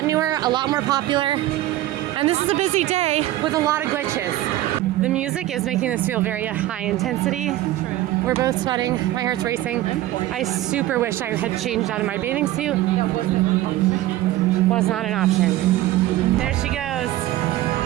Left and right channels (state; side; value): quieter; left; 15.2 dB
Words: newer, a lot more popular, and this is a busy day with a lot of glitches. The music is making this feel very high intensity. We're both sweating, my heart's racing. I super wish I had changed out of my bathing suit. Was not an option. There she goes.